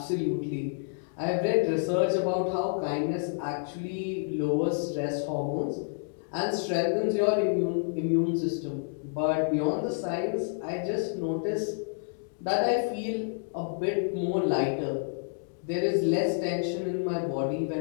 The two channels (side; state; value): right; silent; digital silence